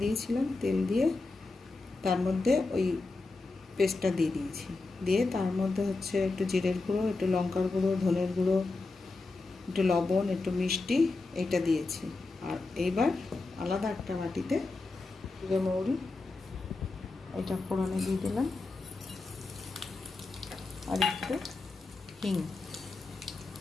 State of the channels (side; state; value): right; quieter; 3.5 dB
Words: দিয়েছিলাম, তেল দিয়ে তার মধ্যে ওই পেস্টটা দিয়ে দিয়েছি, দিয়ে তার মধ্যে হচ্ছে একটু জিরের গুঁড়ো, একটু লঙ্কার গুঁড়ো, ধনের গুঁড়ো, একটু লবণ, একটু মিষ্টি, এইটা দিয়েছি। আর এইবার আলাদা একটা বাটিতে জিরে মৌরি এটা ফোড়নে দিয়ে দিলাম, আর একটু হিং,